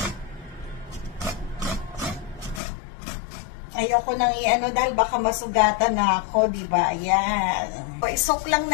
Ayoko nang i-ano dahil baka masugatan na ako, di ba? Ayan. So, isok lang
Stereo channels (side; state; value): right; drops out; at 2.6 s